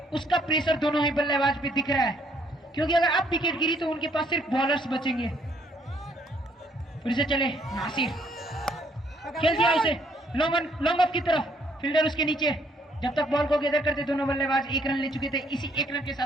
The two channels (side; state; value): both; normal; correlation 0.67